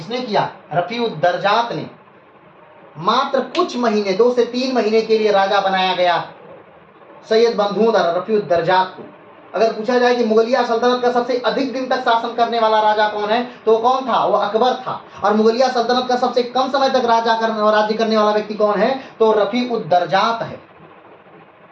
किया? रफीउद्दर्जात ने। मात्र कुछ महीने, 2 से 3 महीने के लिए राजा बनाया गया सैयद बंधुओं द्वारा रफीउद्दर्जात को। अगर पूछा जाए कि मुगलिया सल्तनत का सबसे अधिक दिन तक शासन करने वाला राजा कौन है, तो कौन था? वो अकबर था। और मुगलिया सल्तनत का सबसे कम समय तक राज्य करने वाला व्यक्ति कौन है? तो रफीउद्दर्जात है।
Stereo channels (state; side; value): identical; both; correlation 1.00